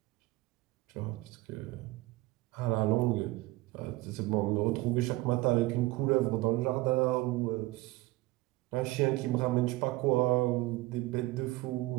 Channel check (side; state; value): left; quieter; 20.1 dB